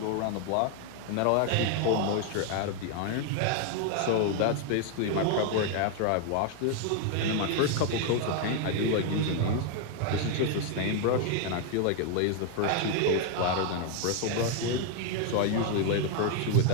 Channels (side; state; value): both; different; correlation 0.00